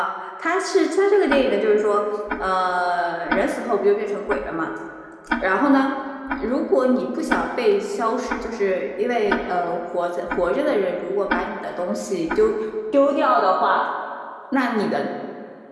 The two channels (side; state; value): both; identical; correlation 1.00